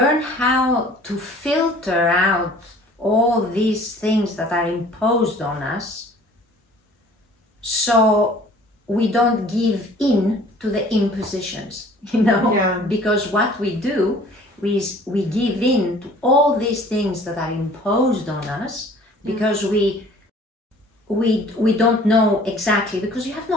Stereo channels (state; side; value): normal; both; correlation 0.51